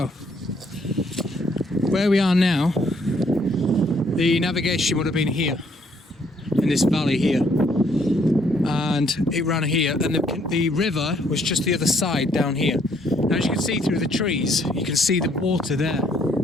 where we are now, the navigation would have been here, in this valley here, and it ran here, and the river was just the other side down here. Now as you can see through the trees, you can see the water there,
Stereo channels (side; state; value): both; normal; correlation 0.67